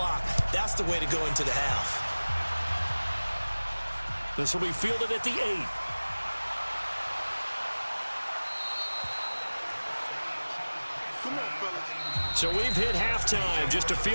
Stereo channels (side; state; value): both; inverted; correlation -1.00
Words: That's the way to go into the half. This will be fielded at the 8. So we've hit halftime. Just a